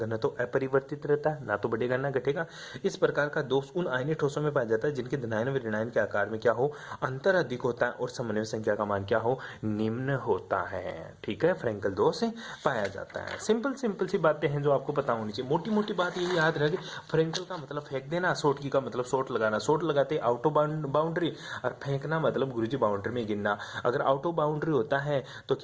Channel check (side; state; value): both; identical; correlation 1.00